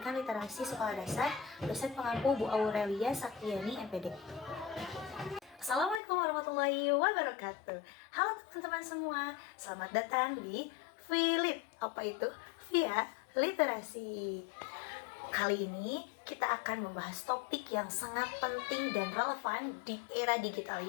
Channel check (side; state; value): right; drops out; at 6.0 s